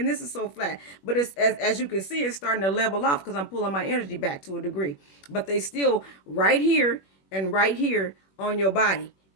this is so flat. But it's as you can see, it's starting to level off because I'm pulling my energy back to a degree. But they still right here and right here on your body.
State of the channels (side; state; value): right; late; 21 ms